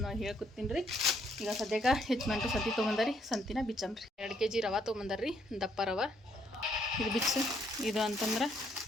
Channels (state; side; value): normal; both; correlation 0.70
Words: ಹೇಳ್ಕೊತೀನಿ ರೀ. ಈಗ ಸದ್ಯಕ್ಕೆ ಹೆಚ್ಚು ಸಂತಿ ತೊಗೊಂಬಂದಾರಿ, ಸಂತಿನ ಬಿಚ್ಚಮ್ರಿ. 2 kg ರವೆ ತೊಗೊಂಬಂದಾರ್ರಿ, ದಪ್ಪ ರವೆ. ಇದು ಬಿಚ್ಚು, ಇದು ಅಂತಂದ್ರೆ